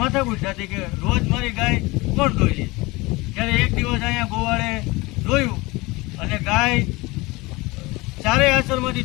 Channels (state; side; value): quieter; right; 22.8 dB